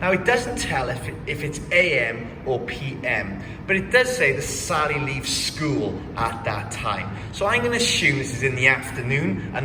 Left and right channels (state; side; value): identical; both; correlation 1.00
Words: Now it doesn't tell if it's AM or PM, but it does say that Sally leaves school at that time. So I'm going to assume this is in the afternoon